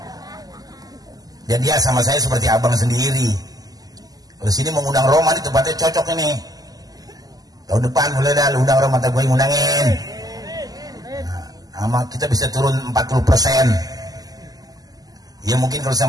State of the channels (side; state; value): left; late; 0.18 ms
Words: Dan dia sama saya seperti abang sendiri. Kalau sini mengundang Roma di tempatnya cocok ini. Tahun depan boleh dah undang Roma, tak gue ngundangin. Nah, kita bisa turun 40%. Ya mungkin kalau